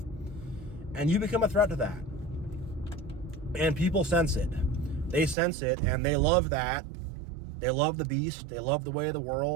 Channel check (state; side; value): drops out; left; at 5.4 s